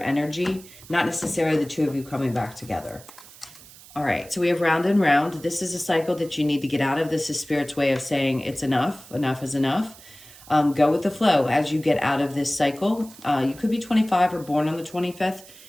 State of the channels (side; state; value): right; noise; hiss, 20 dB below the sound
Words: not necessarily the two of you coming back together. All right, so we have round and round. This is a cycle that you need to get out of. This is Spirit's way of saying it's enough. Enough is enough. Go with the flow as you get out of this cycle. You could be 25 or born on the 25th.